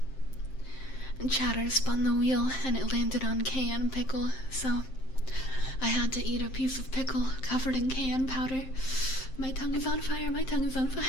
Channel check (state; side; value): late; right; 7.6 ms